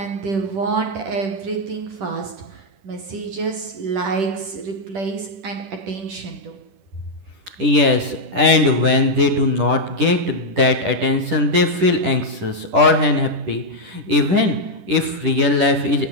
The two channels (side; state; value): left; late; 10 ms